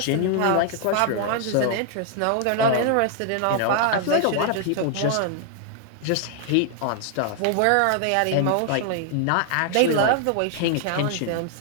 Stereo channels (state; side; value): different; both; correlation 0.00